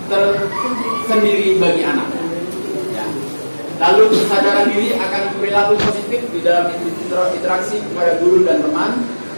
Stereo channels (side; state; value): both; inverted; correlation -1.00